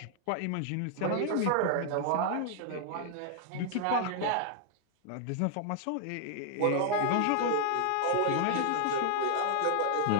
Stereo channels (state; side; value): different; both; correlation 0.00